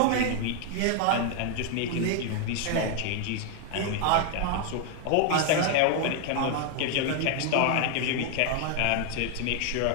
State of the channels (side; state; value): both; different; correlation 0.00